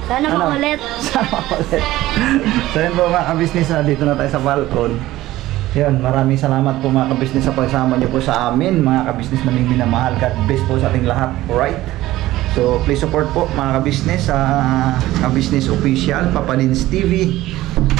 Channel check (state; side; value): quieter; left; 16.2 dB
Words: Sana makulit. Sana makulit. So yun po mga ka-business, dito na tayo sa Falcon. Yun, maraming salamat po mga ka-business sa pagsama niyo po sa amin, mga ka-business naming minamahal. God bless po sa ating lahat, alright? So please support po mga ka-business sa ka-business official, Papa Lins TV,